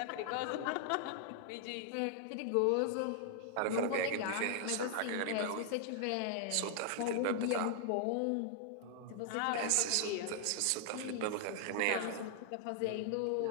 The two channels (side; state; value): both; different; correlation 0.00